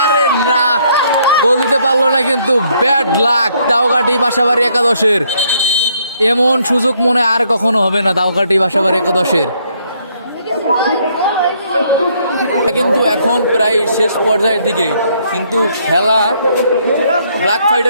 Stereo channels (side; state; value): both; inverted; correlation -0.69